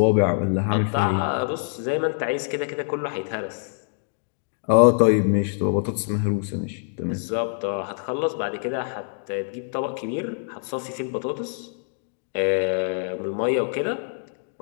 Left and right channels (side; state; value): right; silent; digital silence